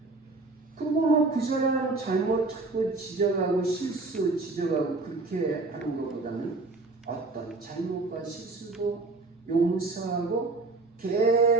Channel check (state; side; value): quieter; left; 3.4 dB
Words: 그리고 뭐 그 사람 잘못하고 지적하고 실수 지적하고 그렇게 하는 것보다는 어떤 잘못과 실수도 용서하고